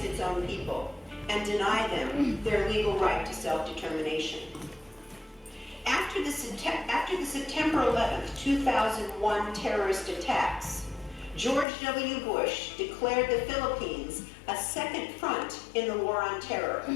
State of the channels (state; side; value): drops out; right; at 11.7 s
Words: its own people, and deny them their legal right to self-determination. After the September 11th, 2001 terrorist attacks, George W. Bush declared the Philippines a second front in the war on terror.